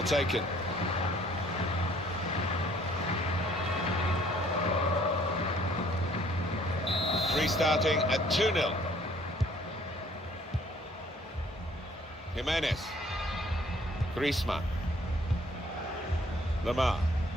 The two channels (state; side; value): normal; both; correlation 0.59